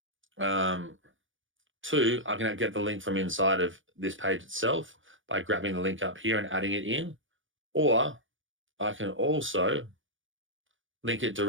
I can get the link from inside of this page itself by grabbing the link up here and adding it in, or I can also link it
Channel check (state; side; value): late; left; 0.57 ms